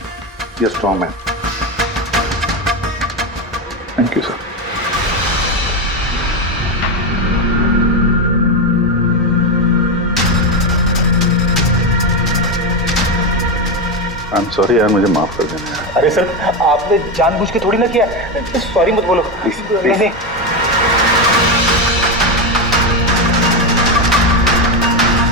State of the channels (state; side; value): normal; both; correlation 0.12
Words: you strong man. Thank you sir. I am sorry यार, मुझे माफ कर देना। अरे सर, आपने जानबूझ के थोड़ी ना किया। सॉरी मत बोलो प्लीज। नहीं।